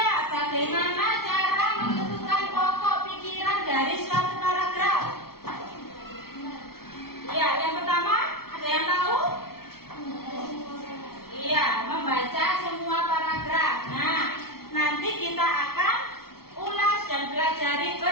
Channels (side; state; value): right; late; 0.94 ms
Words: bagaimana cara menentukan pokok pikiran dari suatu paragraf? Iya, yang pertama, ada yang tahu? Iya, membaca semua paragraf. Nah, nanti kita akan ulas dan pelajari